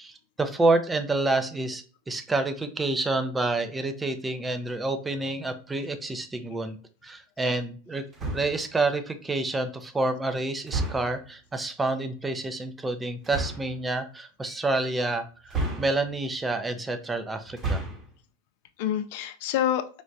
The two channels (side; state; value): both; normal; correlation 0.64